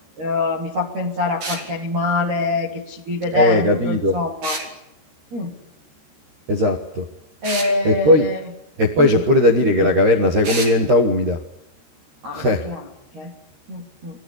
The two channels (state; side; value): late; left; 14 ms